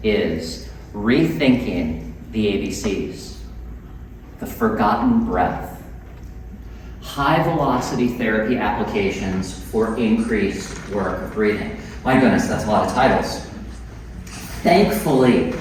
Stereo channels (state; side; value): identical; both; correlation 1.00